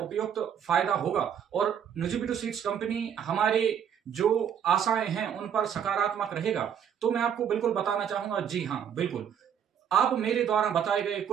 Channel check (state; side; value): quieter; left; 8.4 dB